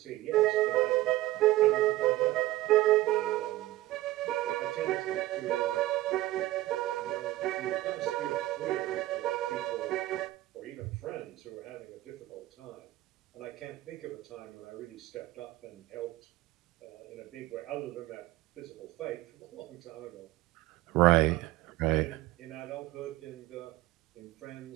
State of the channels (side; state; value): left; quieter; 16.7 dB